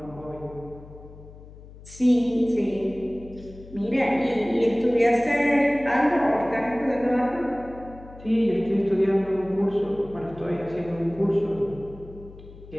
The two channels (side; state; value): left; noise; hum, 18 dB below the sound